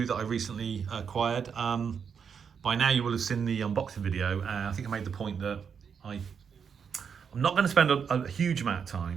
that I recently acquired. By now you will have seen the unboxing video. I think I made the point that I'm not going to spend a huge amount of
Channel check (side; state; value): left; quieter; 6.8 dB